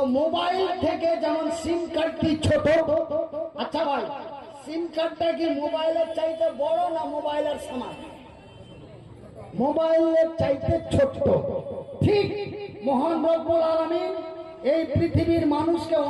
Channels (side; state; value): both; identical; correlation 1.00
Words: মোবাইল থেকে যেমন সিম কার্ডটি ছোট, আচ্ছা ভাই, সিম কার্ডটা কি মোবাইলের চাইতে বড় না মোবাইলের সমান? মোবাইলের চাইতে ছোট। ঠিক মহান রব্বুল আলামিন এই পৃথিবীর মানুষকে